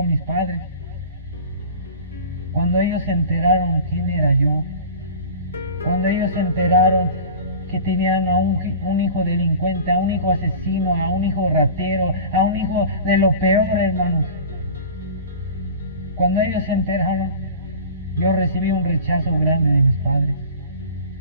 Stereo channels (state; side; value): inverted; both; correlation -0.38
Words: mis padres. Cuando ellos se enteraron quién era yo, cuando ellos se enteraron que tenían a un hijo delincuente, a un hijo asesino, a un hijo ratero, a un hijo de lo peor, hermanos. Cuando ellos se enteraron, yo recibí un rechazo grande de mis padres.